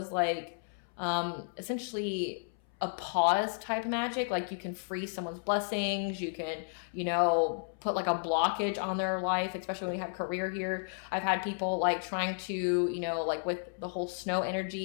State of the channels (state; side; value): silent; right; 56 dB below the other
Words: like essentially a pause type magic. Like you can freeze someone's blessings, you can, you know, put like a blockage on their life, especially when we have career here. I've had people like trying to, you know, like with the whole snow